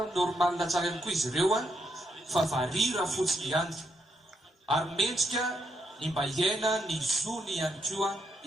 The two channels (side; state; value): both; normal; correlation 0.78